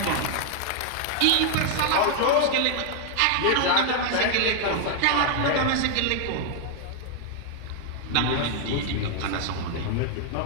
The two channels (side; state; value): both; different; correlation 0.00